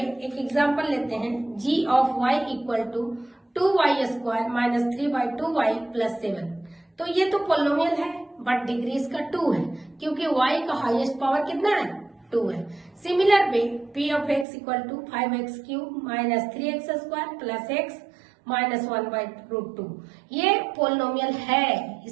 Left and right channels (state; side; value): drops out; left; at 14.5 s